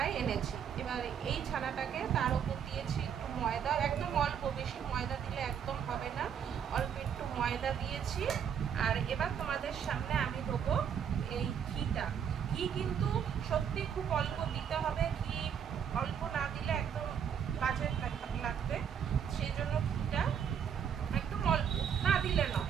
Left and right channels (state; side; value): quieter; left; 8.0 dB